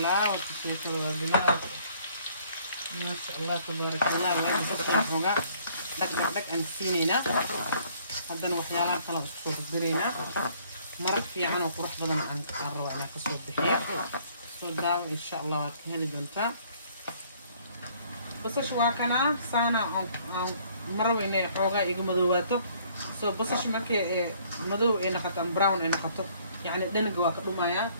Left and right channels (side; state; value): both; inverted; correlation -0.61